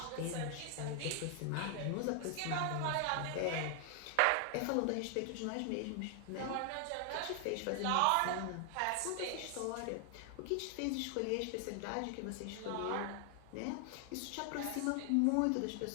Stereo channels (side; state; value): both; different; correlation 0.00